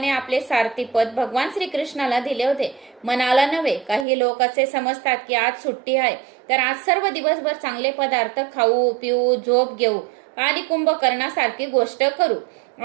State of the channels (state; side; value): drops out; left; at 4.0 s